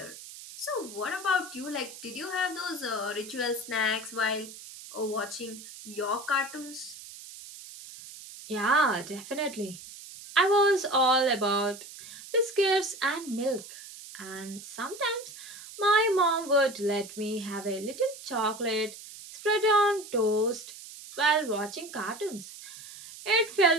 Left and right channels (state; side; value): noise; right; hiss, 15 dB below the sound